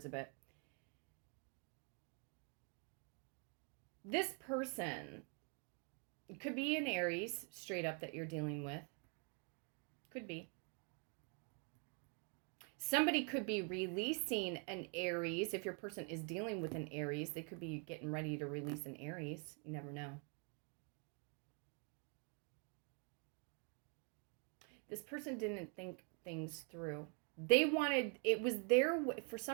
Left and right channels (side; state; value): left; quieter; 38.6 dB